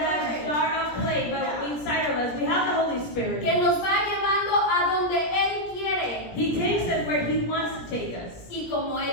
jar of clay, but inside of us, we have the Holy Spirit. que nos va llevando a donde Él quiere He takes us where He wants to take us. y como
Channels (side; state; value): right; late; 17 ms